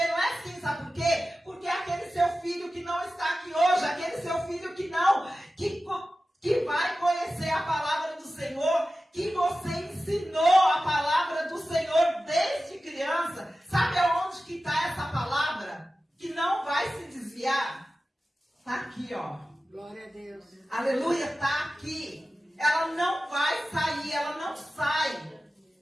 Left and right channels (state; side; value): normal; both; correlation 0.94